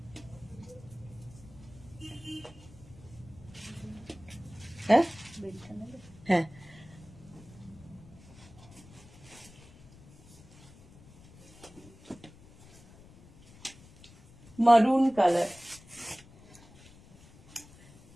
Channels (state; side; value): noise; left; rumble, 22 dB below the sound